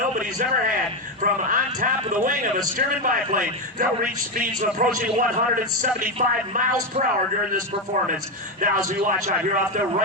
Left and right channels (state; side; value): normal; both; correlation 0.10